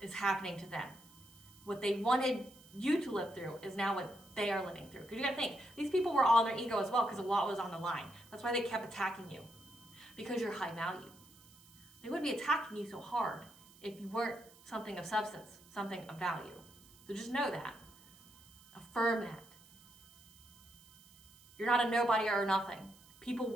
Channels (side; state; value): right; noise; hiss, 24 dB below the sound